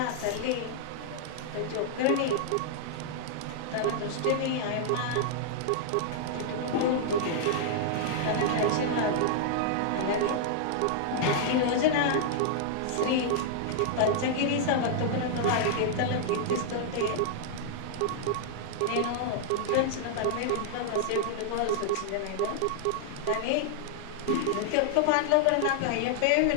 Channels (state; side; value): different; both; correlation -0.01